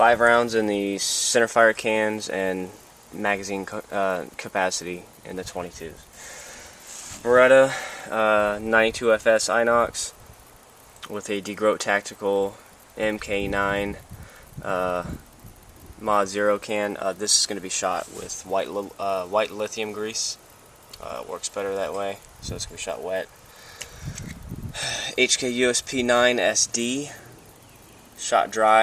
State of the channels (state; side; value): identical; both; correlation 1.00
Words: rounds in the centerfire cans and magazine capacity in the 22s. Beretta 92FS Inox with a DeGroat Tactical MK9 Mod 0 can. This is going to be shot with white lithium grease. Works better that way, so it's going to be shot wet. HK USP 9 SD, shot